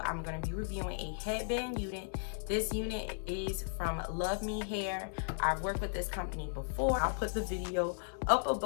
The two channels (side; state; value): right; silent; digital silence